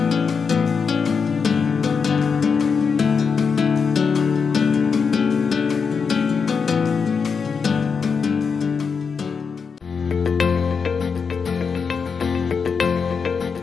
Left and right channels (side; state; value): right; quieter; 5.7 dB